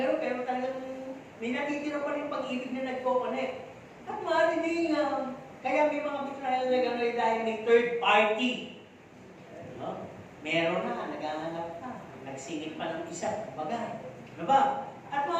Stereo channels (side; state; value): both; identical; correlation 1.00